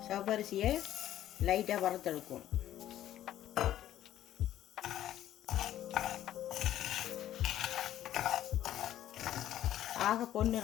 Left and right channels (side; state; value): right; quieter; 12.4 dB